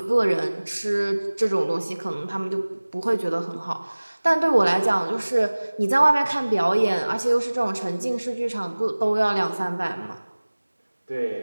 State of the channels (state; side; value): inverted; both; correlation -1.00